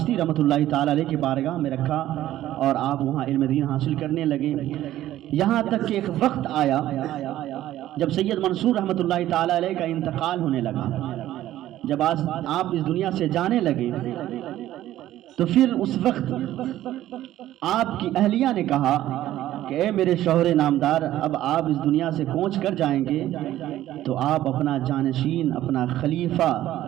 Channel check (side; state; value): left; quieter; 13.7 dB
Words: رحمۃ اللہ تعالی علیہ کی بارگاہ میں رکھا، اور آپ وہاں علم دین حاصل کرنے لگے، یہاں تک کہ ایک وقت آیا جب سید منصور رحمۃ اللہ تعالی علیہ کا انتقال ہونے لگا۔ جب آپ اس دنیا سے جانے لگے تو پھر اس وقت آپ کی اہلیہ نے کہا کہ اے میرے شوہر نامدار، اب آپ اس دنیا سے کوچ کر جائیں گے تو آپ اپنا جانشین، اپنا خلیفہ